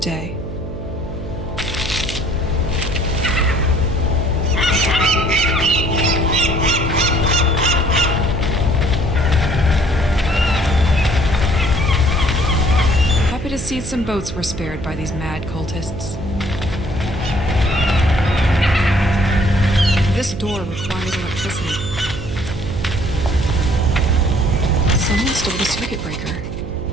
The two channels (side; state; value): right; noise; hum, 9 dB below the sound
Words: Happy to see some boats were spared by these mad cultists. This door requires electricity. Someone stole the circuit breaker.